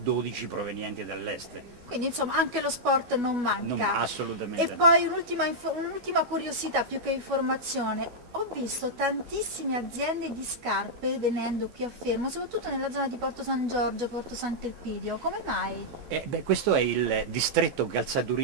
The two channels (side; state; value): left; late; 12 ms